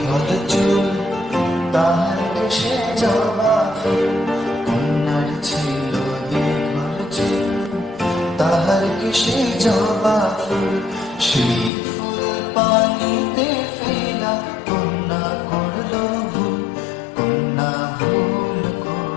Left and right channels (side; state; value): right; drops out; at 11.7 s